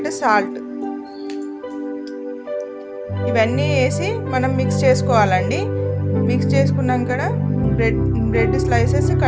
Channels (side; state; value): both; identical; correlation 1.00